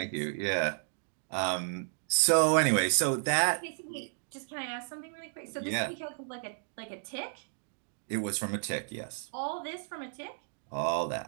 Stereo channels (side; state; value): left; silent; digital silence